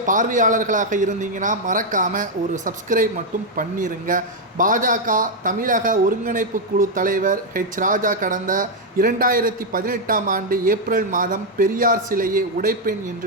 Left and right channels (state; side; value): normal; both; correlation 0.00